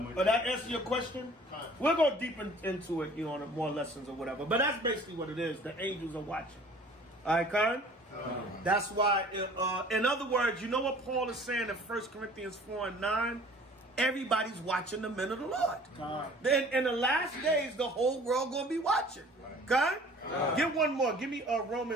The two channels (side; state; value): both; normal; correlation 0.49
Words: that answer your question? We'll go deep into it, on more lessons or whatever. But that's basically what it is. The angels are watching. All right, Khan? That's why, in other words, you know what Paul is saying in 1 Corinthians 4 and 9? Everybody's watching the men of the Lord. Then in the last days, the whole world going to be watching. Okay? Get one more. Give me